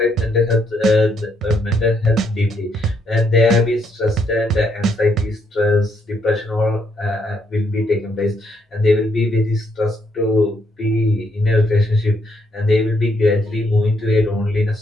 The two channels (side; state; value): both; normal; correlation 0.74